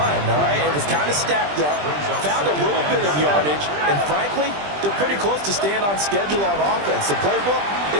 all right? It was kind of stacked up, found a little bit of yardage, and frankly, they're pretty close to staying on schedule on offense. The playbook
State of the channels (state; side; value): late; left; 20 ms